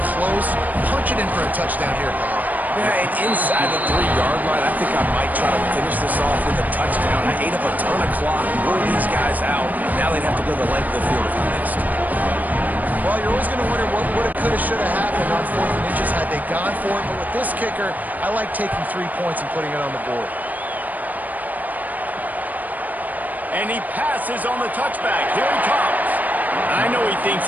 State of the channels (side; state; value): left; late; 0.081 ms